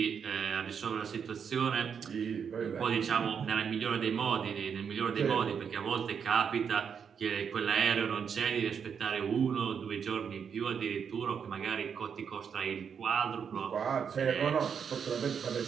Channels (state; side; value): quieter; left; 7.0 dB